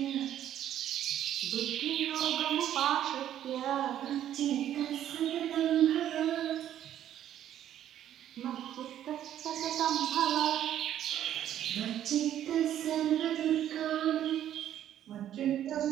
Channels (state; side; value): quieter; left; 11.2 dB